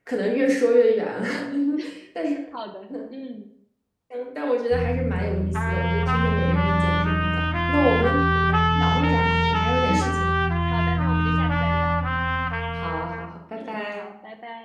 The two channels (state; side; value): identical; both; correlation 1.00